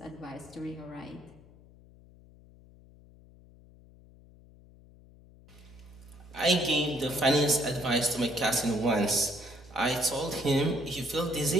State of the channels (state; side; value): noise; left; hum, 24 dB below the sound